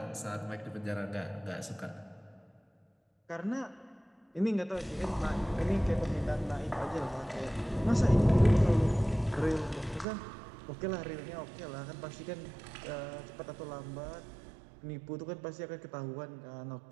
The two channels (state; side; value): drops out; left; at 10.1 s